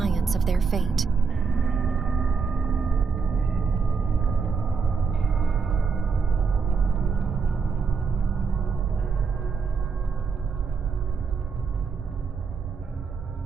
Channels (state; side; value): quieter; left; 5.3 dB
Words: of their fate.